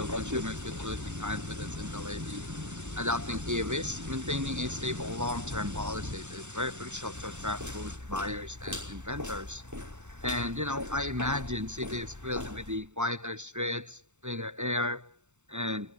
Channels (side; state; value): left; late; 0.84 ms